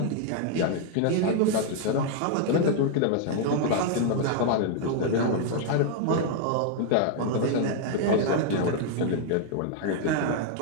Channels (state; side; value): different; both; correlation 0.00